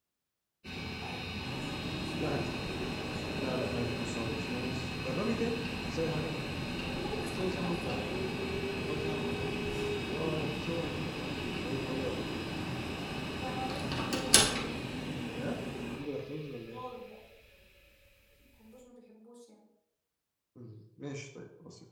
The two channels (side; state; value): both; identical; correlation 1.00